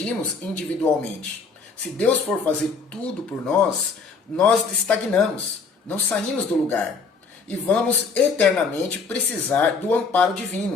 individualmente. Se Deus for fazer tudo por nós, nós estagnamos, não saímos do lugar. E vamos eternamente precisar do amparo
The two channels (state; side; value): quieter; right; 4.8 dB